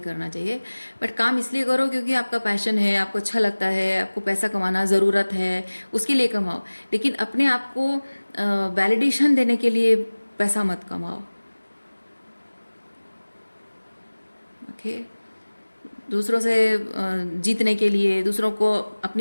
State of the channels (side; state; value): both; inverted; correlation -1.00